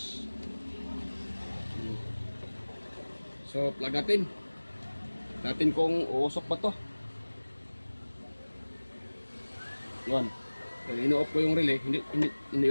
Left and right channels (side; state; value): both; inverted; correlation -1.00